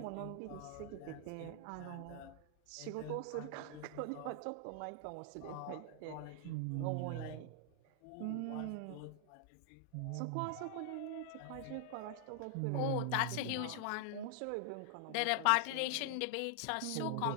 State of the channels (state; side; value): different; both; correlation 0.00